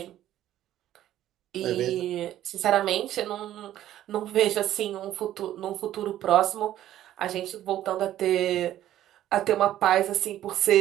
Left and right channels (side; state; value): left; quieter; 12.7 dB